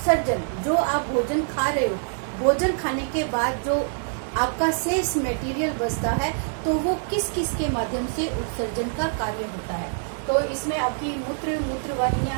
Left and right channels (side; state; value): left; silent; digital silence